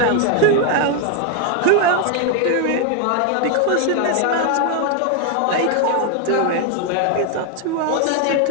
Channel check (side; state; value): both; different; correlation 0.00